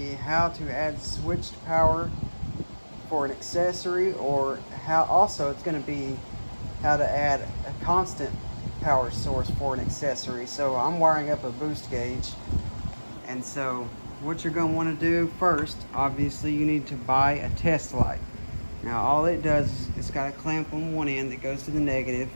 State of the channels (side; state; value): both; inverted; correlation -1.00